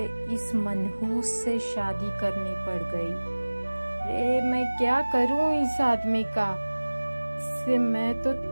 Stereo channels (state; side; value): inverted; both; correlation -1.00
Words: इस मनहूस से शादी करनी पड़ गई। अरे, मैं क्या करूं इस आदमी का? इससे मैं तो